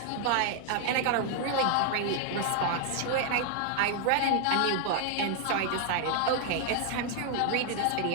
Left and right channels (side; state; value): both; different; correlation 0.00